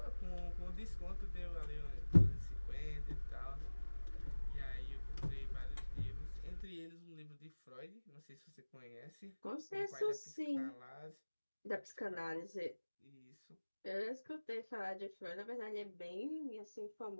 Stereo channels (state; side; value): inverted; both; correlation -1.00